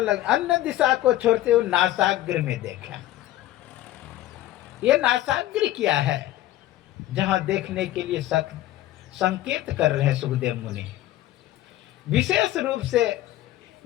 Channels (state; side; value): quieter; right; 14.7 dB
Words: अन्य दिशा को छोड़ते हुए नासाग्र में देखा। ये नासाग्र क्या है, जहां देखने के लिए संकेत कर रहे हैं सुखदेव मुनि। विशेष रूप से